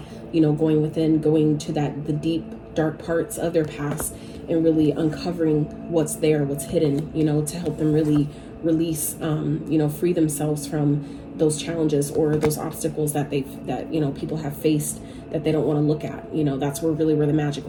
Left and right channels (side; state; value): both; identical; correlation 1.00